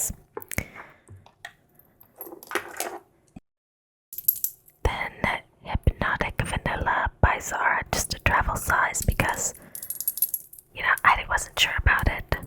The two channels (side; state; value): both; identical; correlation 1.00